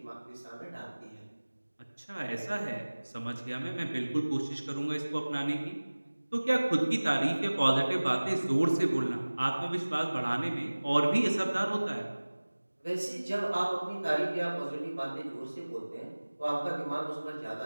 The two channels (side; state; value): both; inverted; correlation -1.00